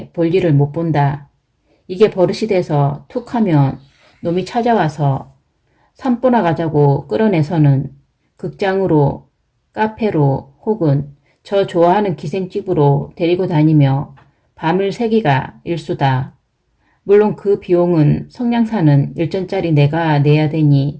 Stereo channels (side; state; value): both; identical; correlation 1.00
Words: 볼일을 못 본다. 이게 버릇이 돼서 툭 하면 놈이 찾아와서 산보나 가자고 끌어내서는 극장으로 카페로 혹은 저 좋아하는 기생집으로 데리고 다니며 밤을 새기가 일수다. 물론 그 비용은 성냥사는 일전짜리 내가 내야